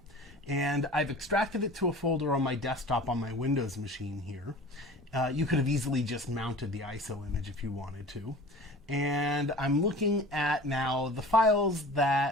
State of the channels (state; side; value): normal; both; correlation 0.41